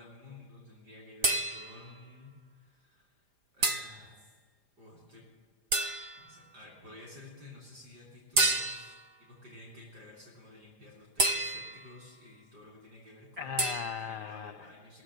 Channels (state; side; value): late; left; 5.0 ms